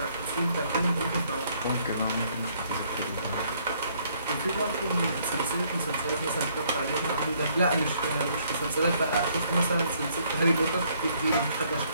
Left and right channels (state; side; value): inverted; both; correlation -0.66